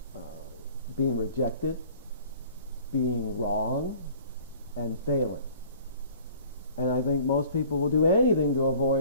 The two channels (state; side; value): inverted; both; correlation -0.50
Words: being rejected, being wrong, and failing. And I think most people will do anything to